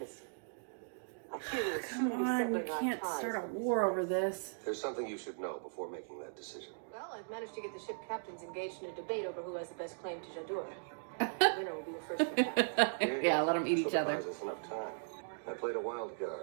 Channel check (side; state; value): left; silent; digital silence